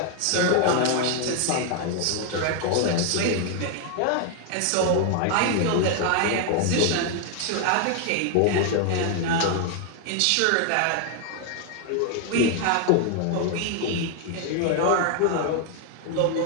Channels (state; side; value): different; both; correlation 0.00